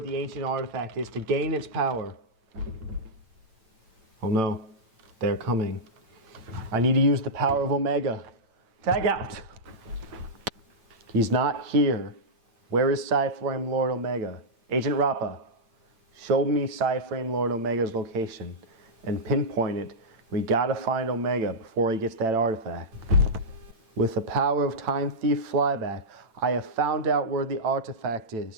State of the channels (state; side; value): late; left; 9.0 ms